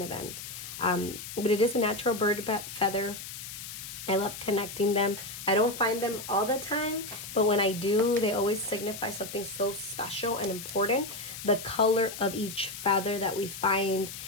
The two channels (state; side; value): noise; left; hiss, 10 dB below the sound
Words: event. But it is a natural bird feather. I love connecting them. I don't find them all the time, but when I do, they always signify something so special and important. The color of each feather that we find